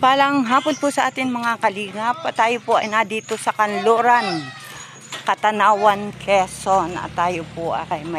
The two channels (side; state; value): both; identical; correlation 1.00